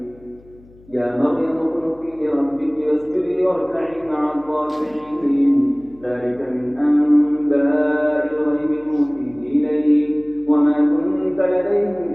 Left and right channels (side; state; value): left; noise; hum, 26 dB below the sound